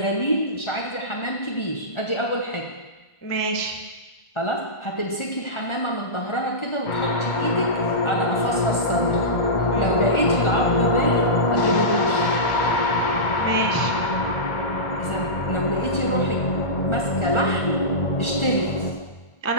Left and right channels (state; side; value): late; right; 1.5 ms